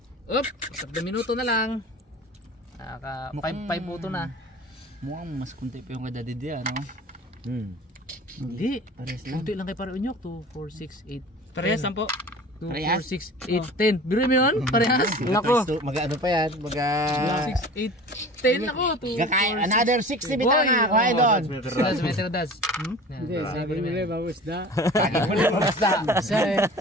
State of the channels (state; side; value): normal; both; correlation 0.40